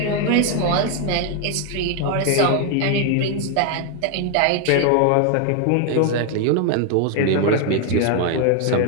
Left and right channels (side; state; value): both; different; correlation 0.00